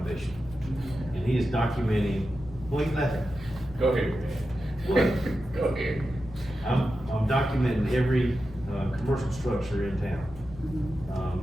And he is documenting, well, you laughing? Go ahead, What? man. Go ahead. I'm documenting every, commercial structure in town.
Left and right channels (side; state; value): both; normal; correlation 0.91